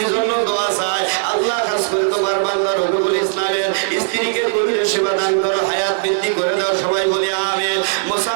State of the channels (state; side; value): silent; left; 67 dB below the other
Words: জন্য দোয়া চাই। আল্লাহ খাস করে তোমার বান্দা রফিকুল ইসলামের স্ত্রীকে গভীর সেবা দান করো, হায়াত বৃদ্ধি করে দাও। সবাই বলি আমিন।